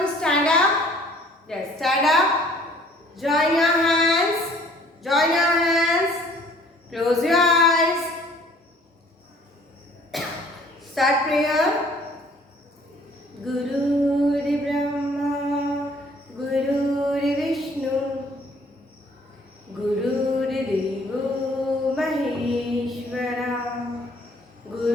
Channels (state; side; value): normal; both; correlation 0.56